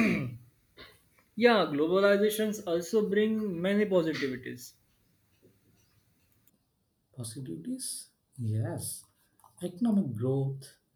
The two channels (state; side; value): identical; both; correlation 1.00